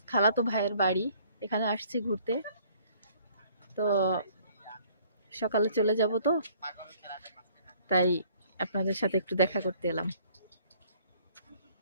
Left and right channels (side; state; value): both; inverted; correlation -0.58